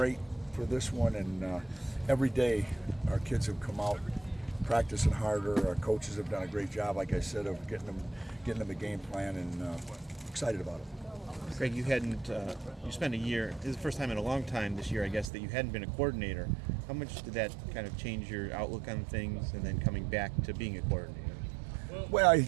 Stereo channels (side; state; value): left; drops out; at 15.3 s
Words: for this one, and every day our kids have come out practicing harder. Our coaches have done a great job, like I said, of getting them a game plan, and excited about it. Greg, you spent a year, this is the first time in a long time this year, I guess, that you hadn't been a coordinator. How much did that kind of change your outlook on things, and then coming back to being a coordinator? Well,